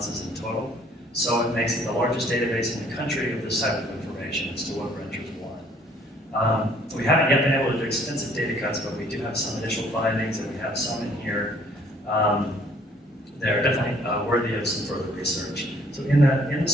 in total. So it makes it the largest database in the country of this type of information as to what renters want. We haven't yet been able to do extensive data cuts, but we do have some initial findings, and we have some in here. They're definitely worthy of some further research. So in the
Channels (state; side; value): normal; both; correlation 0.60